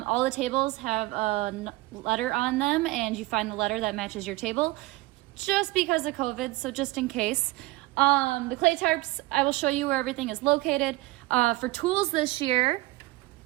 the tables have a letter on them, and you find the letter that matches your table just because of COVID, so just in case. The clay tarps, I will show you where everything is located. For tools this year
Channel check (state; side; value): quieter; left; 20.2 dB